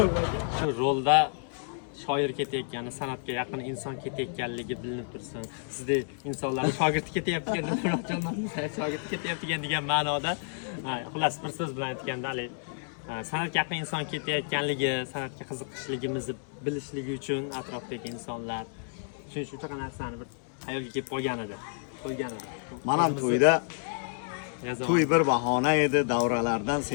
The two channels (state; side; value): silent; right; 58 dB below the other